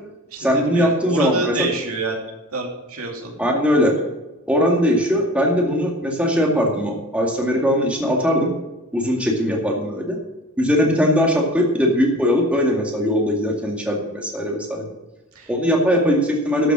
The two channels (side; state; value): both; normal; correlation 0.42